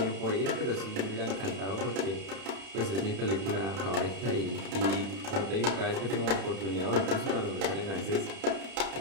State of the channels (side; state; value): left; late; 31 ms